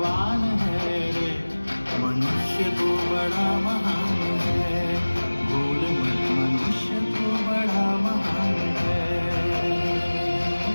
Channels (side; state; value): both; inverted; correlation -1.00